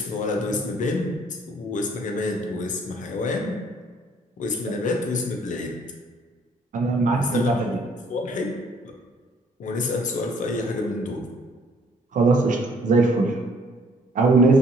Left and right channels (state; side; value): normal; both; correlation 0.61